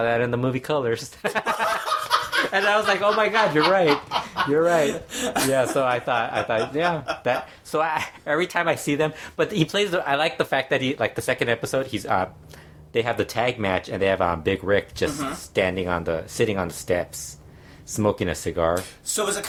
that in the movie Colors. And I was like, oh my God, you're right. Yeah, so I thought, yeah. So every time I see them, but he plays. I like the fact that he like the second episode. He's they have the tag match and they have Big Rick just sitting on the steps, smoking a cigar. So is it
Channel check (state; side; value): identical; both; correlation 1.00